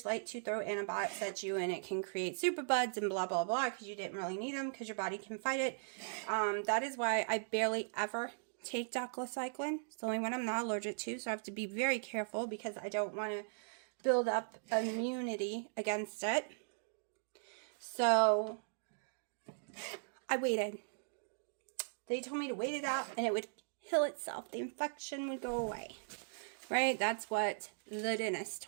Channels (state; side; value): silent; left; digital silence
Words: like to throw antibiotics at you, and it can create superbugs and blah, blah, blah, because you didn't really need them because your body can fight it. That is why I barely ever take doxycycline. It's the only one I'm not allergic to, so I have to be very careful because I don't want to build up immunity against it. So I waited. They told me to wait it out and it would heal itself. The infection would go away. Right? That's what the dentist